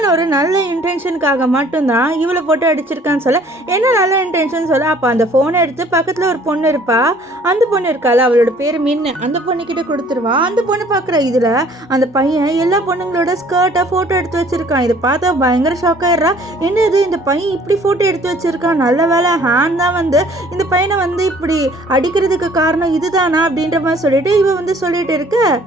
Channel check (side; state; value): both; normal; correlation 0.56